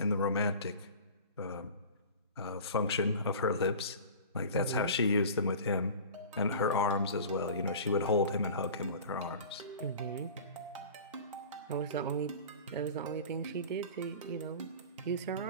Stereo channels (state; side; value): inverted; both; correlation -0.38